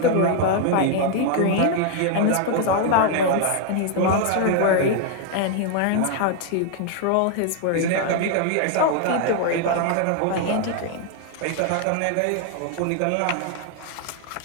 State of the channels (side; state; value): both; different; correlation 0.00